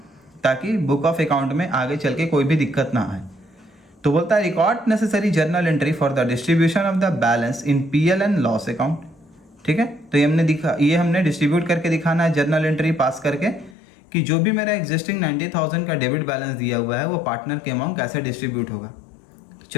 ताकि बुक ऑफ अकाउंट में आगे चल के कोई भी दिक्कत ना आए। तो बोलता है record necessary journal entry for the distribution of the balance in PL and loss account, ठीक है। तो ये हमने डिस्ट्रीब्यूट करके दिखाना है जर्नल एंट्री पास करके कि जो भी मेरा एग्जिस्टिंग 90,000 का डेबिट बैलेंस दिया हुआ है वो पार्टनर के अमाउंट कैसे डिस्ट्रीब्यूट होगा। तो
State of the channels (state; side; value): drops out; right; at 13.8 s